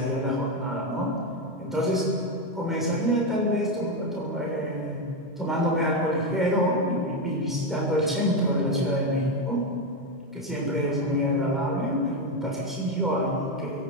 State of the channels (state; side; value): normal; both; correlation 0.09